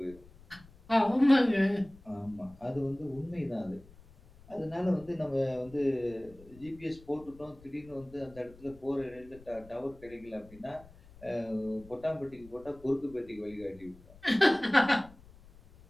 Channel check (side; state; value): left; noise; rumble, 23 dB below the sound